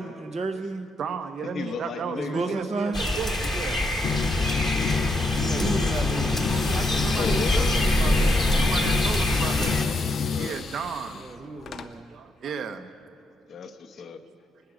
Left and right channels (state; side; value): normal; both; correlation 0.79